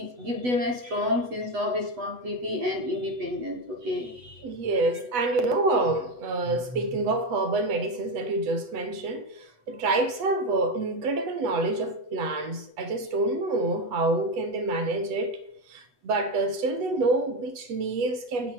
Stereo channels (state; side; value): late; left; 8.1 ms